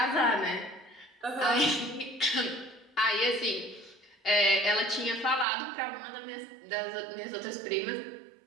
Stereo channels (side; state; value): left; drops out; at 5.5 s